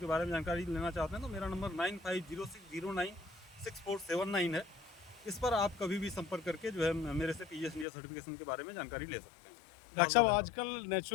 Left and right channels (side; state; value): right; drops out; at 7.9 s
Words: बारे में जानकारी लेना चाहते हैं तो मेरा नंबर 9506096479 है। इस पर आप कभी भी संपर्क करके जो है मेरे से पीजीएस इंडिया सर्टिफिकेशन के बारे में जानकारी ले सकते हैं। डॉक्टर साहब, आजकल